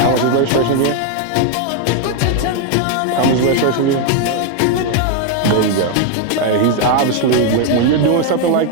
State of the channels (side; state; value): both; different; correlation 0.01